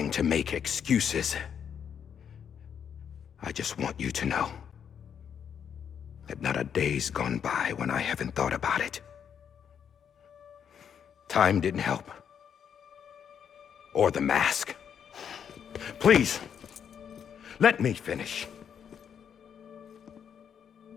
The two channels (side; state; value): right; quieter; 8.0 dB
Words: to make excuses. I just want you to know that not a day's gone by when I haven't thought about it. Time didn't help. Or the mask. Please, let me finish.